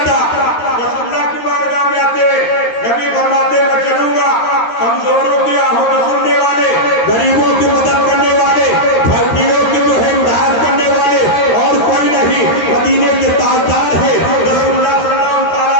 رسول اللہ کی بارگاہ میں آتے، نبی فرماتے میں چلوں گا، کمزوروں کی آہوں سننے والے، غریبوں کی مدد کرنے والے، بھٹیوں کی جو ہے امداد کرنے والے اور کوئی نہیں، مدینے کے تاجدار ہے، رسول اللہ صلی اللہ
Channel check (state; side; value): late; right; 13 ms